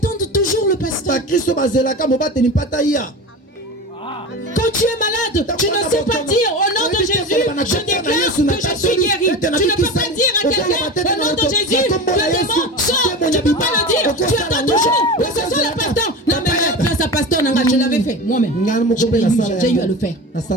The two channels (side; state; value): both; normal; correlation 0.29